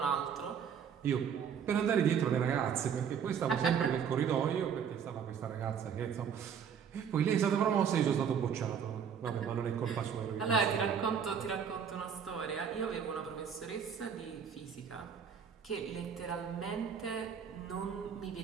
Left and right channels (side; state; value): left; quieter; 7.5 dB